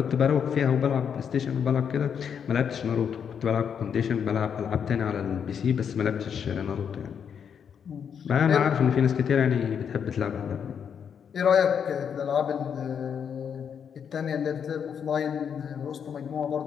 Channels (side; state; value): right; quieter; 7.5 dB